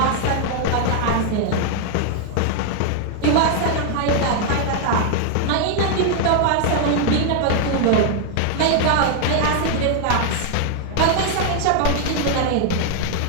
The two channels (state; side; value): different; both; correlation 0.00